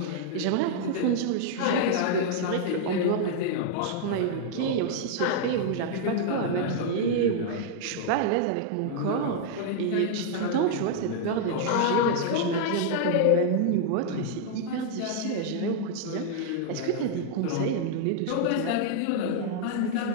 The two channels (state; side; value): different; both; correlation -0.01